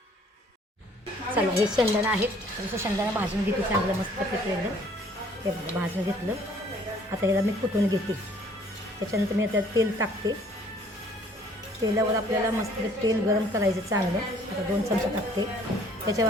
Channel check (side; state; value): both; normal; correlation 0.58